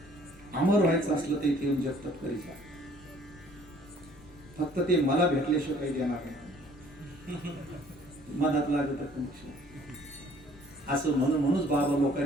अमर व्हायचं असलं तर इथे येऊन जगतात करी जा, फक्त ते मला भेटल्याशिवाय काही देणार नाही, मनात लागत असं म्हणूनच बाबा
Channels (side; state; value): left; noise; rumble, 22 dB below the sound